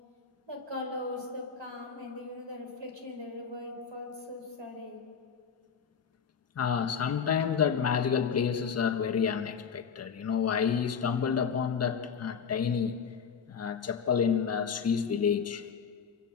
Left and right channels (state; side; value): quieter; right; 6.7 dB